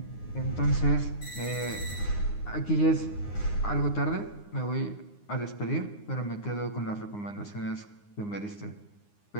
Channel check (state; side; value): late; right; 9.7 ms